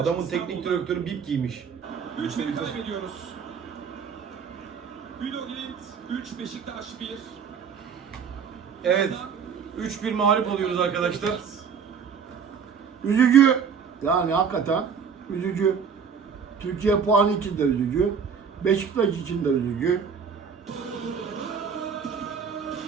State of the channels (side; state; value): left; quieter; 6.5 dB